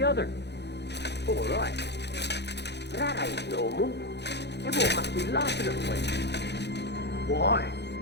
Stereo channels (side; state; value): right; late; 0.50 ms